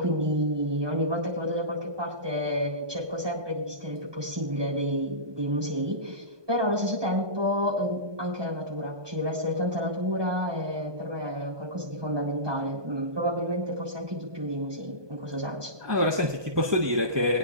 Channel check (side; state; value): left; late; 1.2 ms